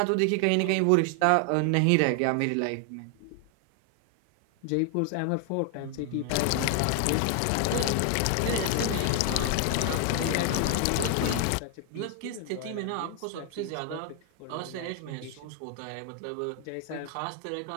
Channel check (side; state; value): both; different; correlation 0.00